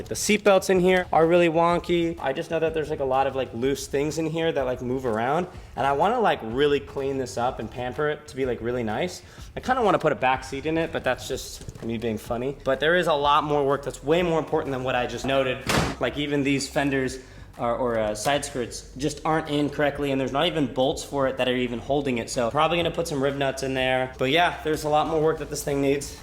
the seat belts in here are really wonky. I just know that there's like a lot of like loose things in here that like move around, and I wanna like really clean this up and pamper it to be like really nice. I kinda wanna put a back seat in it, but that's just me being funny. But there is a lot more work that's way more important than what I just noted. Like even these fenders or side skirts just aren't in correctly, and there's not even bolts for it that are even holding it. So probably gonna put some rib nuts in there. But yeah, there's a lot more work that this thing needs.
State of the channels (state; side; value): identical; both; correlation 1.00